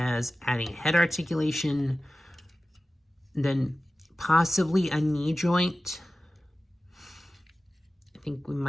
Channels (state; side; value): normal; both; correlation 0.96